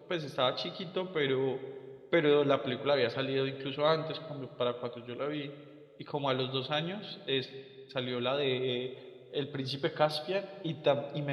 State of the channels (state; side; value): identical; both; correlation 1.00